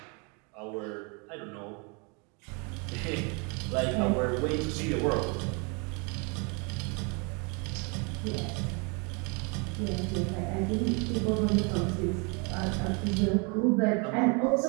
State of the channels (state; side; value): quieter; left; 33.0 dB